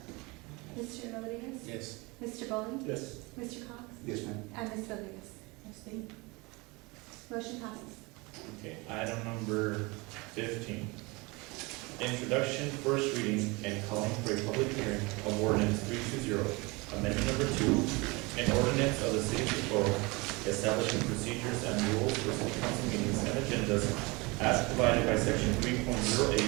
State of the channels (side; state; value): left; quieter; 25.6 dB